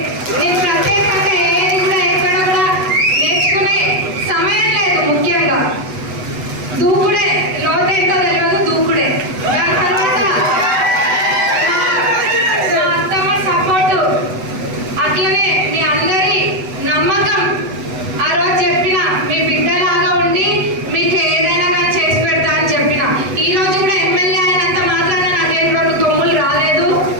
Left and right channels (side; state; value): left; late; 8.0 ms